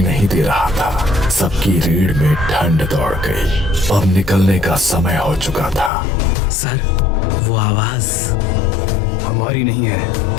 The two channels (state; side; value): drops out; right; at 5.9 s